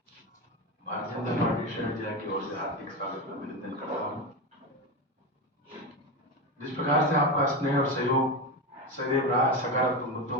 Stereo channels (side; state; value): both; normal; correlation 0.17